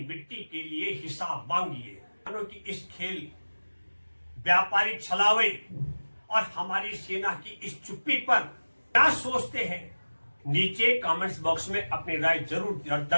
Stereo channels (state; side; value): inverted; both; correlation -1.00